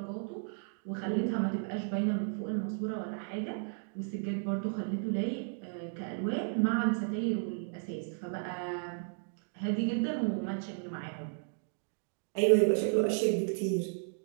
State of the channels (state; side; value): silent; left; 55 dB below the other